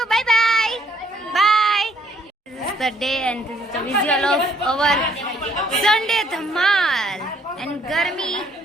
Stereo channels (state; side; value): normal; both; correlation 0.65